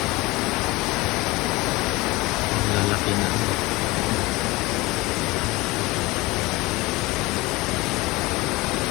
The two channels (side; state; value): right; quieter; 21.8 dB